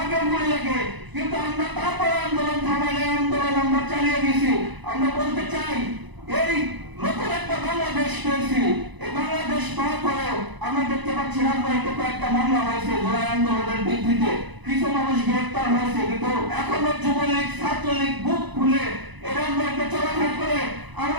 গুলি লাগে। কিন্তু আমরা তারপরে আন্দোলন থামাইলে আন্দোলন আমরা চালিয়ে গেছি। আমরা বলতে চাই, এই নতুন একটা বাংলাদেশ পেয়েছি। এই বাংলাদেশ পাওয়ার পরেও আমরা দেখতে পাচ্ছি রাজবাড়িতে কয়েকটা মামলা হয়েছে জুলাই আন্দোলনের ভিত্তিতে, কিছু মানুষ গ্রেফতার হয়েছে, কিন্তু এখনো যুবলীগ ছাত্রলীগ বুক খুলে এরা চলাফেরা করে।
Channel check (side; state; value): left; late; 1.0 ms